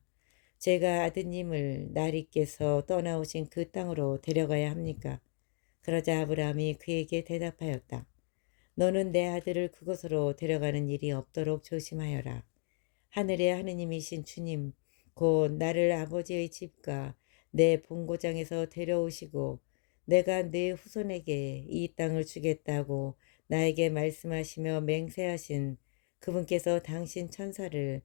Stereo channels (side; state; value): right; silent; 55 dB below the other